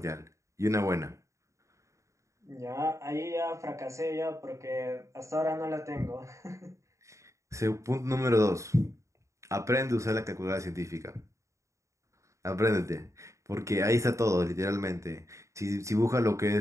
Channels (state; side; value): late; left; 0.15 ms